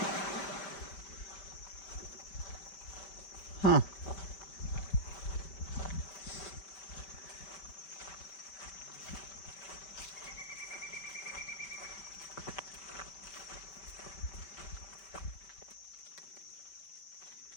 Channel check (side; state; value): right; late; 5.1 ms